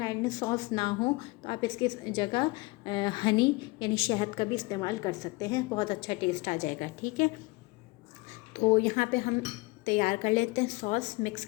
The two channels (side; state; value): right; quieter; 24.5 dB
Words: आइलैंड सॉस ना हो तो आप इसके जगह हनी यानी शहद का भी इस्तेमाल कर सकते हैं, बहुत अच्छा टेस्ट आ जाएगा। ठीक है, तो यहाँ पे हम तैयार कर लेते हैं सॉस, मिक्स